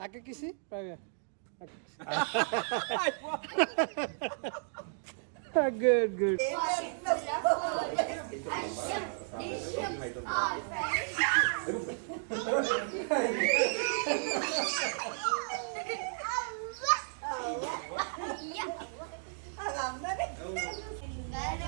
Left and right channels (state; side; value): silent; left; digital silence